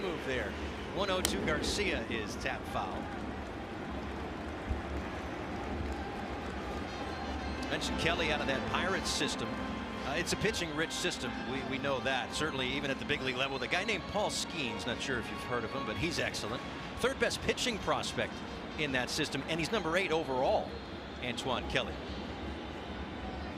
move there. 1-0 Garcia is tap foul. Mentioned Kelly out of that Pirates system. It's a pitching rich system. We know that. Certainly even at the big league level. The guy named Paul Skeens, not sure if you've heard of him, but he's excellent. Third best pitching prospect in that system, and he's number 8 overall, Antoine Kelly.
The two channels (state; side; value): identical; both; correlation 1.00